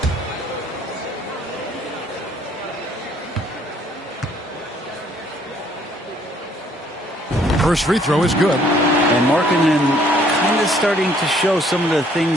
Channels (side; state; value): both; normal; correlation 0.63